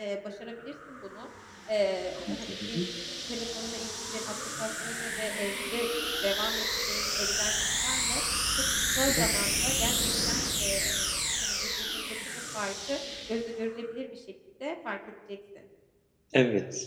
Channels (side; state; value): both; identical; correlation 1.00